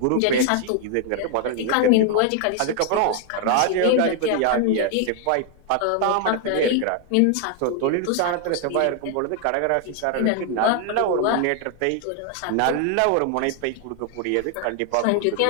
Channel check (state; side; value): different; both; correlation 0.00